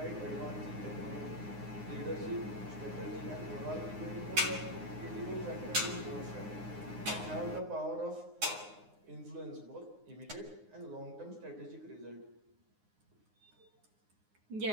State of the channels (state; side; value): late; left; 9.6 ms